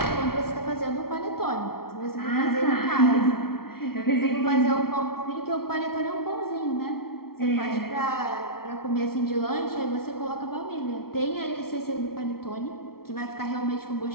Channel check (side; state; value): right; late; 0.94 ms